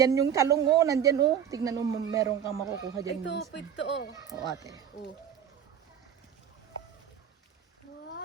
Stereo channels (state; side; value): quieter; left; 8.8 dB